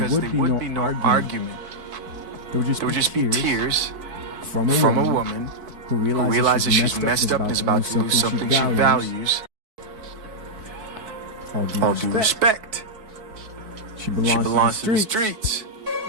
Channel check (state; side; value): late; left; 4.6 ms